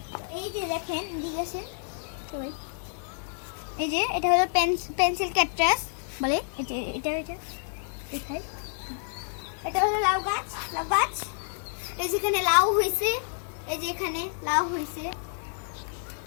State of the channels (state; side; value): silent; right; digital silence